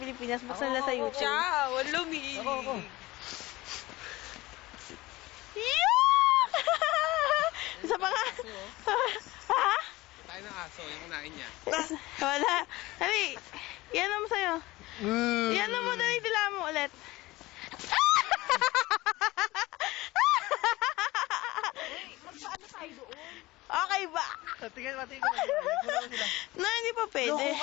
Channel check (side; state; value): right; quieter; 19.6 dB